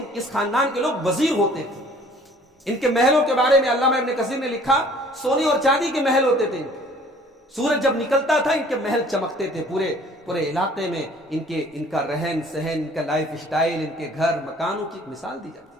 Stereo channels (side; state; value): both; normal; correlation 0.53